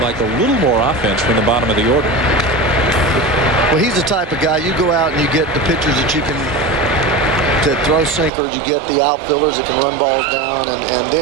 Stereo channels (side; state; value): left; drops out; at 8.3 s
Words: a little more offense from the bottom of the order. Well, he's the type of guy, you go out and you get the pitchers that you can to throw sinkers, you get the outfielders that can run balls down, and